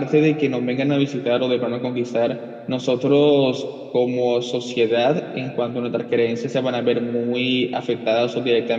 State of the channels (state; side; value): identical; both; correlation 1.00